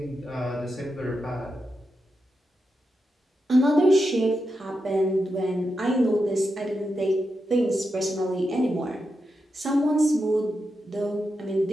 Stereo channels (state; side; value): normal; both; correlation 0.87